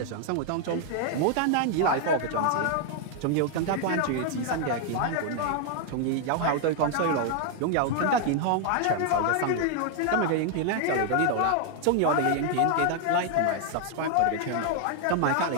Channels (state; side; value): different; both; correlation 0.00